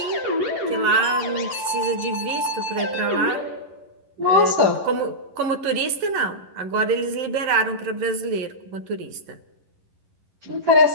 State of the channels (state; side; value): late; left; 11 ms